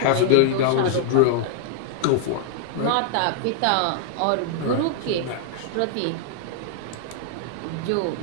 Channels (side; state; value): both; different; correlation 0.00